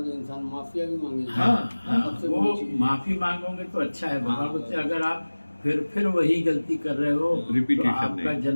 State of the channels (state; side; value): inverted; both; correlation -1.00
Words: तो इंसान माफिया भी मांगेगा। हाँ, सबसे वो बड़ी चीज़ है। माफी मांगोगे तो अच्छा है। भगवान हाँ, बोलते हैं अगर आप फिर वही गलती कर रहे हो तो Repetition आपका नहीं।